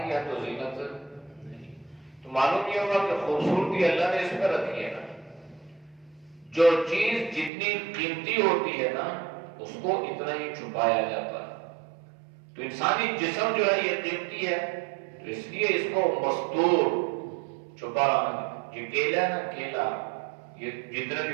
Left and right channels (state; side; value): drops out; left; at 7.5 s